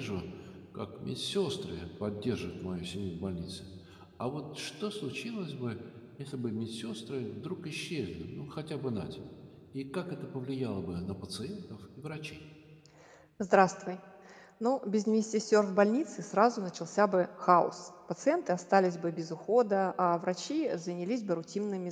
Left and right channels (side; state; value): both; identical; correlation 1.00